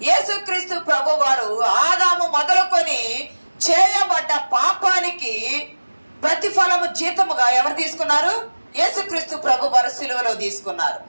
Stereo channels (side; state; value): both; inverted; correlation -1.00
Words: యేసుక్రీస్తు ప్రభు వారు ఆదాము మొదలుకొని చేయబడ్డ పాపానికి ప్రతిఫలము జీతముగా ఎవరు తీసుకున్నారు? యేసుక్రీస్తు ప్రభు వారు సిలువలో తీసుకున్నారు.